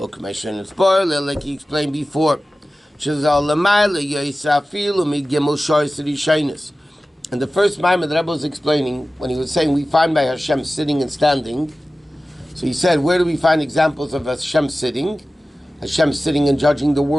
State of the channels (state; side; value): normal; both; correlation 0.96